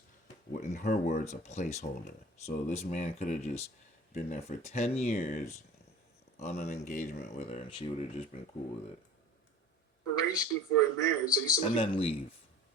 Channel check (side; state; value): both; normal; correlation 0.42